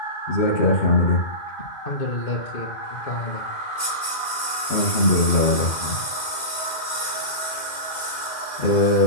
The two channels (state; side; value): late; right; 2.0 ms